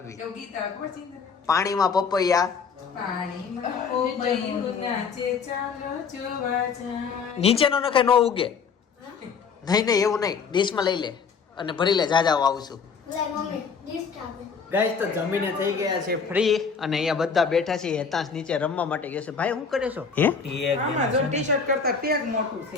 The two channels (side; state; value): right; quieter; 5.8 dB